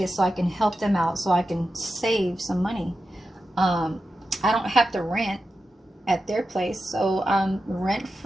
so I can help them out, so I can save some money. I don't have to rent at their place, so I'm rent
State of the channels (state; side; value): normal; both; correlation 0.91